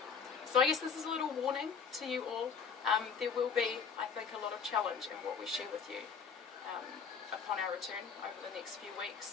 So I guess this is a little warning to you all. There will be, I think, a lot of challenge in what we share with you upon our return over the next few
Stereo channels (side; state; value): right; quieter; 6.1 dB